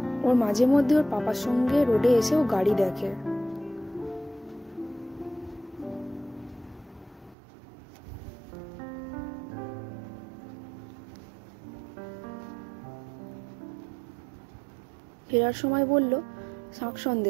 ওর মাঝে মধ্যে ওর পাপার সঙ্গে রোডে এসে ও গাড়ি দেখে। ফেরার সময় বলল শাক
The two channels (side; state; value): left; drops out; at 7.4 s